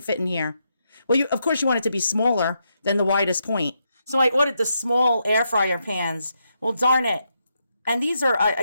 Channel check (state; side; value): inverted; both; correlation -0.81